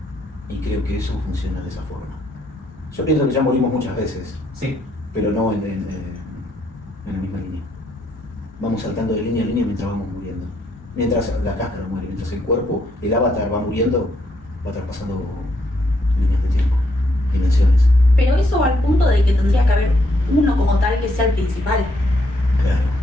Y creo que eso funciona de esa forma. Yo pienso que ya morimos muchas veces, Sí. pero no en la misma línea. Vamos saltando de línea a línea mientras vamos muriendo. Mientras la cáscara muere, mientras el cuerpo, el avatar va muriendo, va traspasando líneas de tiempo, dimensiones. Pero eso va al punto de que tendría que haber uno como tal que sea el principal. Claro.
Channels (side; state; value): both; normal; correlation 0.73